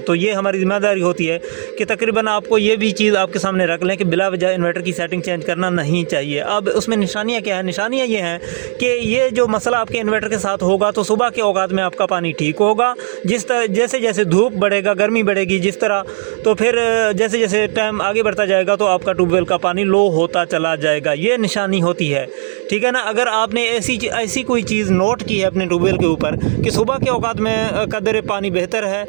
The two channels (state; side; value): silent; left; digital silence